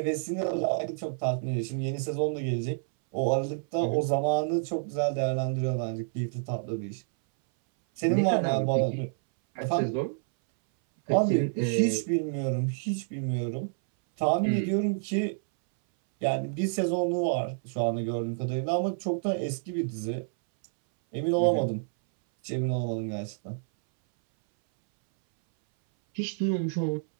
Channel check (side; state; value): left; silent; 59 dB below the other